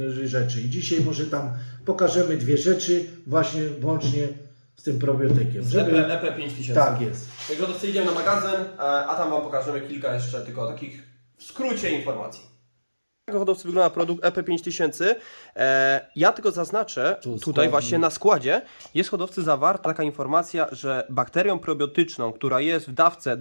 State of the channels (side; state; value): both; inverted; correlation -1.00